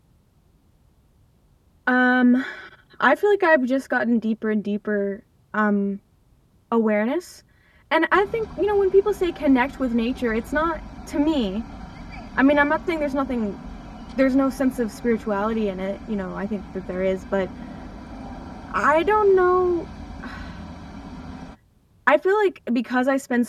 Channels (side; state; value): both; identical; correlation 1.00